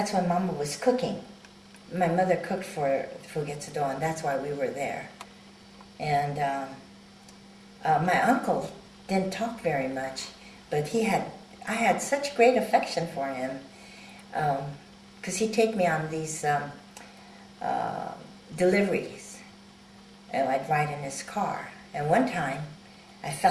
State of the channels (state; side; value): identical; both; correlation 1.00